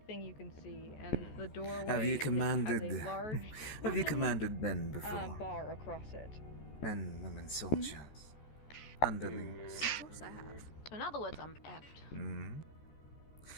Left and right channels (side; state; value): right; late; 14 ms